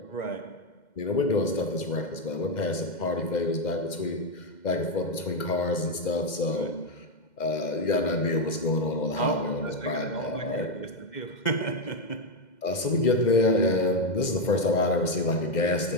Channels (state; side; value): late; right; 2.1 ms